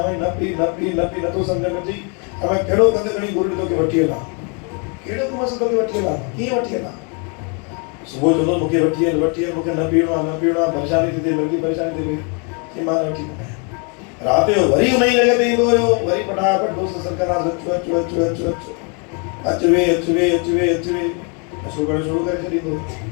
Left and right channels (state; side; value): quieter; right; 36.1 dB